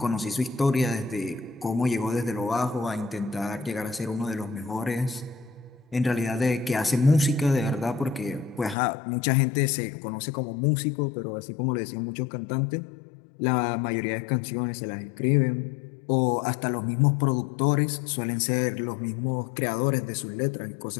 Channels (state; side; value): drops out; right; at 8.8 s